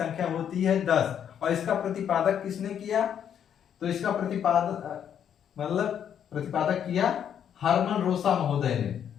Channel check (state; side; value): quieter; right; 8.9 dB